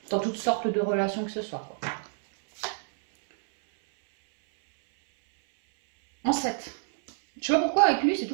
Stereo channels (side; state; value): left; silent; 60 dB below the other